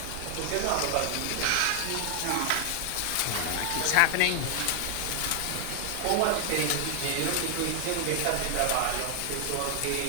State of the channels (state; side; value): different; both; correlation 0.00